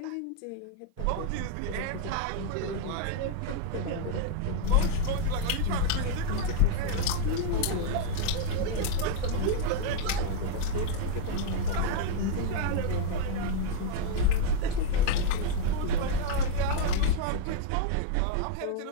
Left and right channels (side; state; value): both; different; correlation 0.00